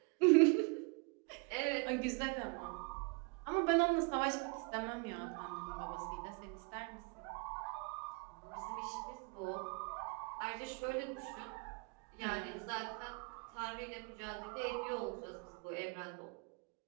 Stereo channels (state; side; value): quieter; left; 32.3 dB